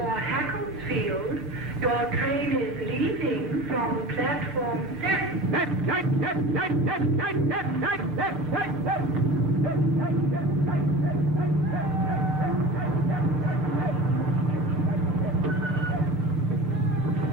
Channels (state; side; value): normal; both; correlation 0.35